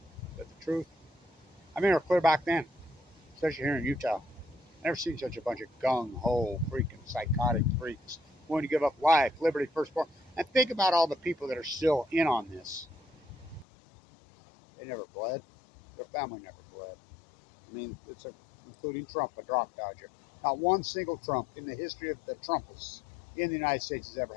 But the truth, we're clear back then, especially here in Utah. Never seen such a bunch of gung-ho, freaking psychotic freaks willing to give up life, liberty, firstborn. And think about all the people that are still in on this. They never bled. Their family never bled. I mean, including Trump, a drop dodger. Not one single Trump in the history of the Trumpists in the United States has ever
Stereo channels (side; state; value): right; drops out; at 13.7 s